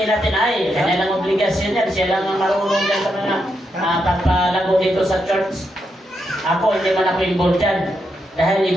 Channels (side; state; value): both; normal; correlation 0.82